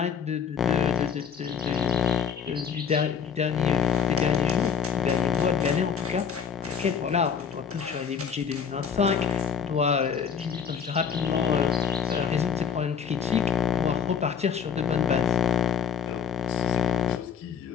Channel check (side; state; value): right; quieter; 6.7 dB